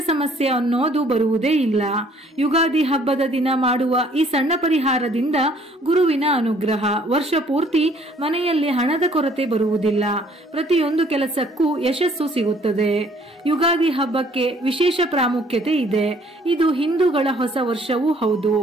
ಸಮಸ್ಯೆ ಅನ್ನೋದು ಬರುವುದೇ ಇಲ್ಲ. ಯುಗಾದಿ ಹಬ್ಬದ ದಿನ ಮಾಡುವ ಈ ಸಣ್ಣ ಪರಿಹಾರದಿಂದ ಗುರುವಿನ ಅನುಗ್ರಹ ವರ್ಷ ಪೂರ್ತಿ ಮನೆಯಲ್ಲಿ ಹಣದ ಕೊರತೆ ಬರುವುದಿಲ್ಲ. ಪ್ರತಿಯೊಂದು ಕೆಲಸಕ್ಕೂ ಯಶಸ್ಸು ಸಿಗುತ್ತದೆ. ಯುಗಾದಿ ಹಬ್ಬಕ್ಕೆ ವಿಶೇಷ ಪ್ರಾಮುಖ್ಯತೆ ಇದೆ. ಇದು ಹಿಂದೂಗಳ ಹೊಸ ವರ್ಷವೂ ಹೌದು.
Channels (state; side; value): normal; both; correlation 0.60